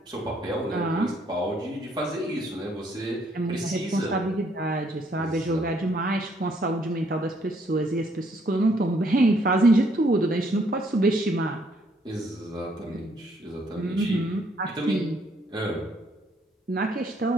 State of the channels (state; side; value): normal; both; correlation 0.68